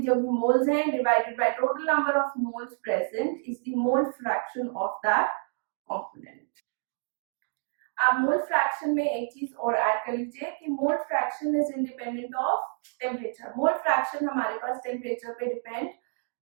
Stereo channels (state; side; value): silent; left; digital silence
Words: जो भी मोल्स हैं divided by total number of moles present is the mole fraction of that component. आप मोल फ्रैक्शन में एक चीज और ऐड कर लीजिए कि mole fraction is independent of temperature. Mole fraction हमारे पास टेम्परेचर पे डिपेंड